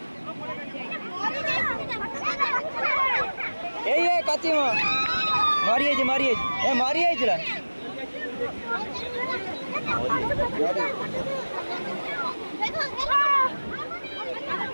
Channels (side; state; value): both; inverted; correlation -1.00